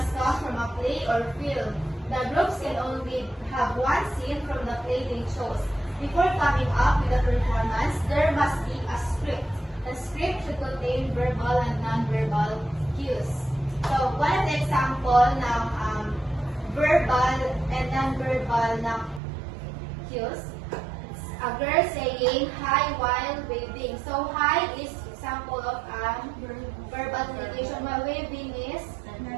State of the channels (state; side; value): drops out; left; at 19.2 s